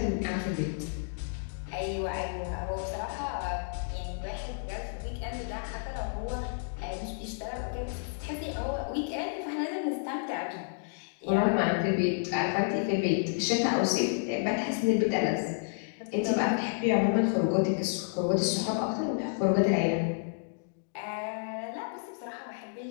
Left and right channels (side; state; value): right; silent; digital silence